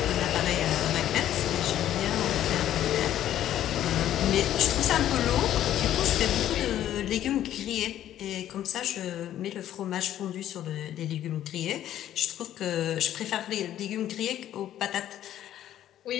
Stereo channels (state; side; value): quieter; right; 11.9 dB